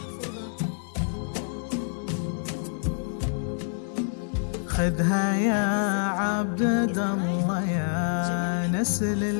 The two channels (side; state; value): right; silent; digital silence